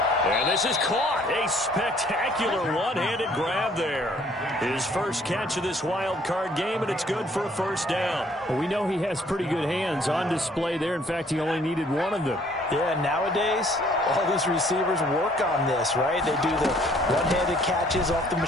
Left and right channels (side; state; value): both; normal; correlation 0.60